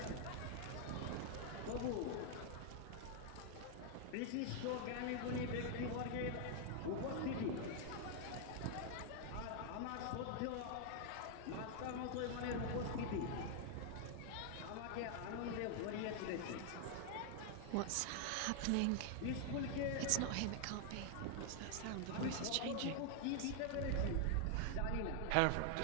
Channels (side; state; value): both; different; correlation 0.00